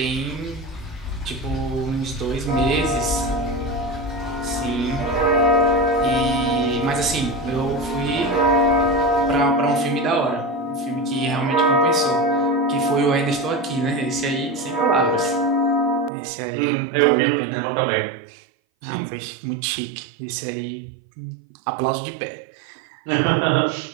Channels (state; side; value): drops out; left; at 16.1 s